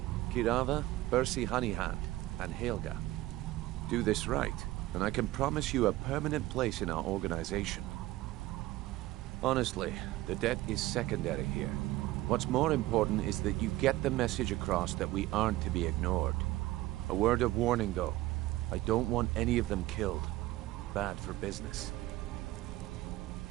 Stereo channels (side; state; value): left; quieter; 17.0 dB